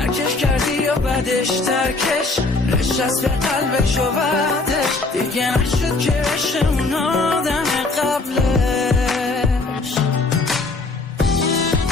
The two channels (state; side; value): quieter; right; 3.4 dB